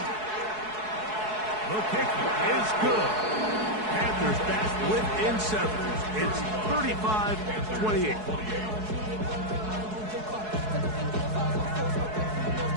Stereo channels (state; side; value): late; left; 4.7 ms